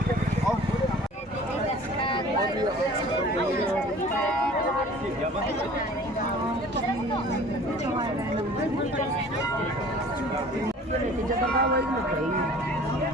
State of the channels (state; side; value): normal; both; correlation 0.47